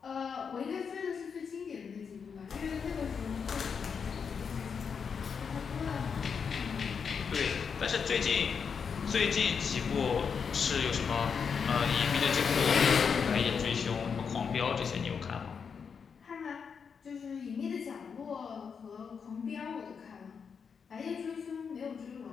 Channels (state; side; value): quieter; right; 6.3 dB